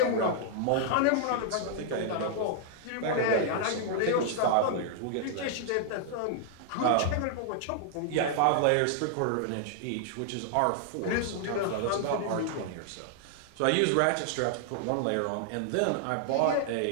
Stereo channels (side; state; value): both; different; correlation -0.01